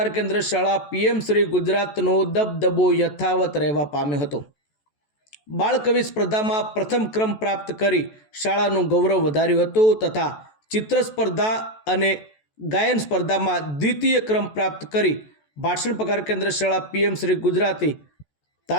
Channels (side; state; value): right; late; 14 ms